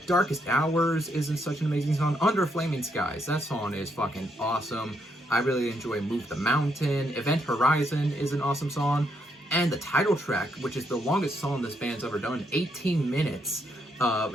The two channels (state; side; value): normal; both; correlation 0.76